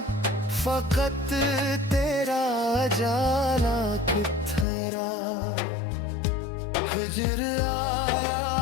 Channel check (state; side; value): drops out; right; at 4.7 s